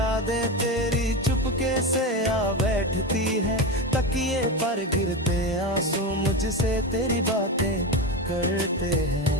तेरी चुपके से आ बैठती है, तकिए पर गिरते आंसू मुझसे तेरी बातें करते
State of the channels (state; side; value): normal; both; correlation 0.19